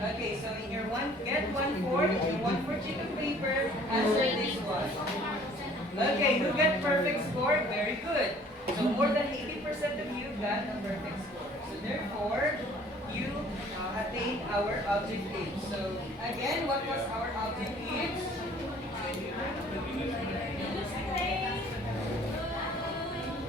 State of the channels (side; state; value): both; normal; correlation 0.54